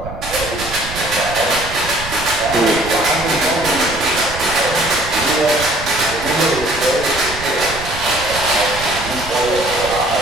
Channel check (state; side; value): noise; right; rumble, 11 dB below the sound